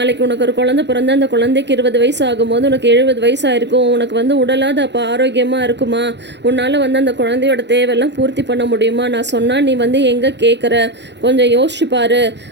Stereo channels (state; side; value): late; left; 0.51 ms